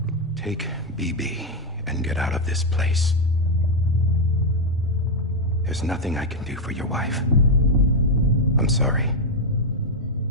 Take BB and get out of this place. There's nothing I can do for your wife. I'm sorry.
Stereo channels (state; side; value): normal; both; correlation 0.02